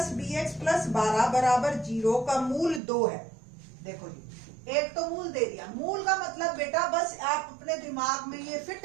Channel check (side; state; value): left; drops out; at 2.8 s